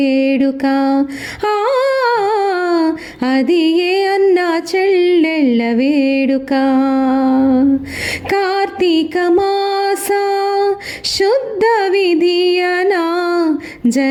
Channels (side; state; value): both; identical; correlation 1.00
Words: అది ఏ అన్న చెల్లెళ్ళ వేడుక. కార్తీక మాస శుద్ధ విధియనా